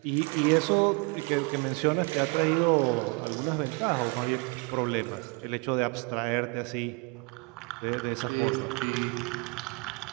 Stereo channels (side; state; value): left; quieter; 31.0 dB